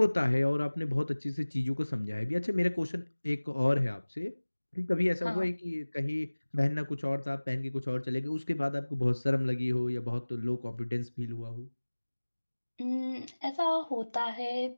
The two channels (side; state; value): both; inverted; correlation -1.00